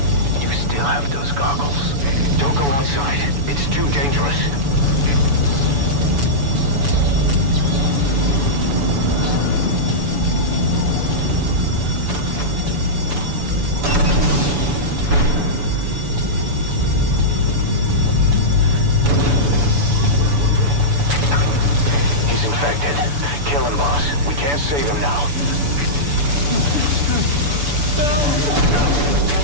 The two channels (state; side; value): late; left; 7.0 ms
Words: You still have those goggles. Don't go outside. It's too dangerous. Kill him, boss. We can't save him now.